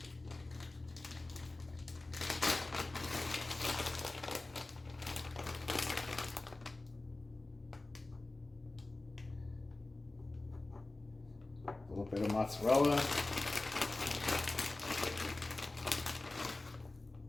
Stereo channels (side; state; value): right; quieter; 3.0 dB